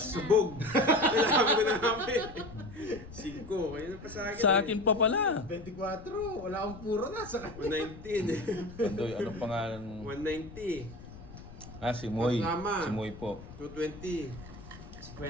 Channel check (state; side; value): noise; left; rumble, 16 dB below the sound